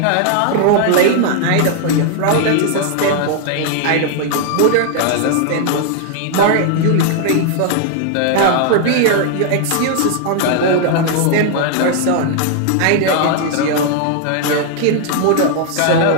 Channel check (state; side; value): different; both; correlation 0.00